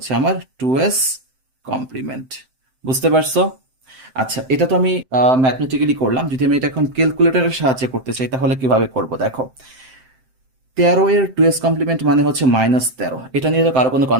আমার 2s কমপ্লিমেন্ট। বুঝতে পারছো? আচ্ছা, এটা তো আমি ম্যাথমেটিক্যালি করলাম। যদি আমি এটা এখন ক্যালকুলেটরের সাহায্যে করতে চাই, তাহলে কিভাবে করব? দেখো, 13 এর 2s কমপ্লিমেন্ট মানে হচ্ছে -13, এটা নিয়ে তো কারো কোনো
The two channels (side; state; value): left; late; 7.7 ms